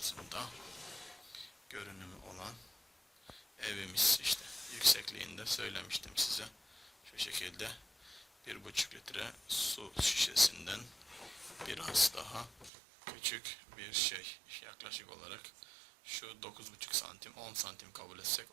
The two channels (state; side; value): drops out; left; at 12.7 s